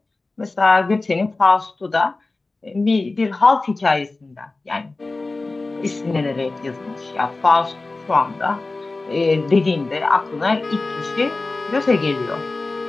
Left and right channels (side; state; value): right; quieter; 3.4 dB